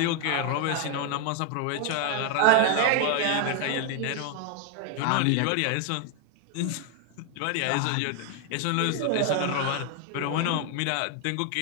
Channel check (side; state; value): both; different; correlation 0.01